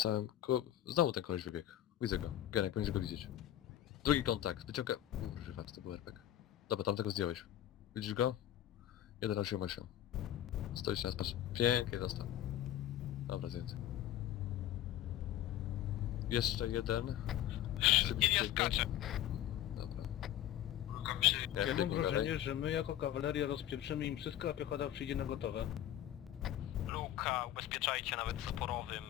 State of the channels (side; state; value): right; quieter; 12.2 dB